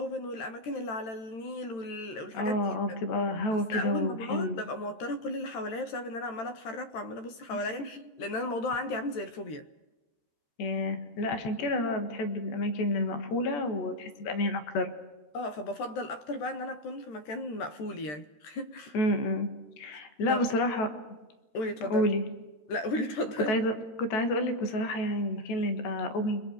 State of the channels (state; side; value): late; right; 13 ms